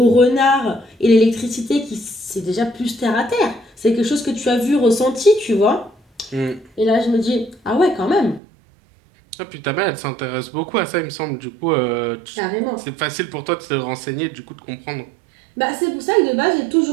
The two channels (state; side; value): drops out; left; at 8.4 s